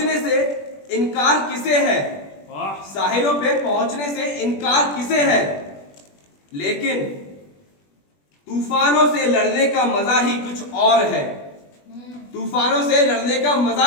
से इनकार किसे है साहिलों पे पहुंचने से इनकार किसे है लेकिन तूफानों से लड़ने का मजा ही कुछ और है तूफानों से लड़ने का मजा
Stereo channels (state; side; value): late; right; 21 ms